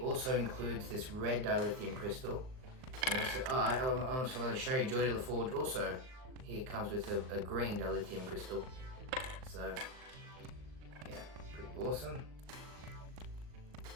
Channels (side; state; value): left; late; 39 ms